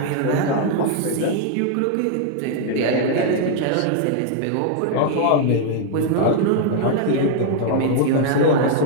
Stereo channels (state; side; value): different; both; correlation 0.00